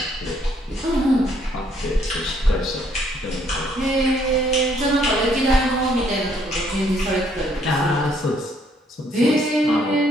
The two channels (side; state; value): both; normal; correlation 0.67